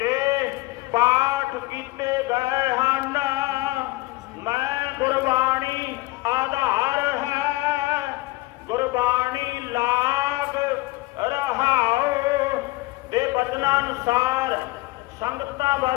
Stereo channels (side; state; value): right; quieter; 20.7 dB